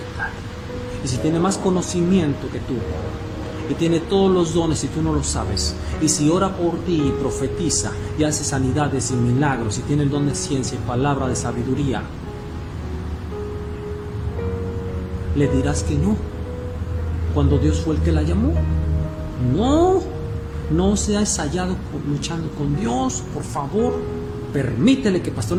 Y si tiene más conocimiento que tú, y tiene todos los dones y tú no lo sabes, y si ora por ti y profetiza y hace sanidades y milagros, y tiene el don de ciencia y palabra de sabiduría, le dirás que no, cuando Dios fue el que la llamó. No seas hallado luchando con Dios, por favor. Permítele que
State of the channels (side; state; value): both; identical; correlation 1.00